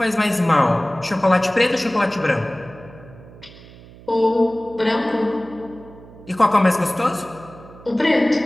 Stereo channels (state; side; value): noise; right; hum, 20 dB below the sound